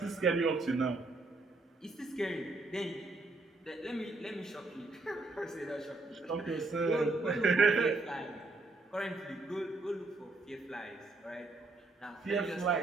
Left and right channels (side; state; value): left; quieter; 3.2 dB